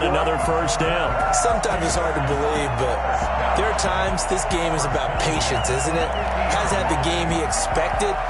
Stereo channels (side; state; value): both; identical; correlation 1.00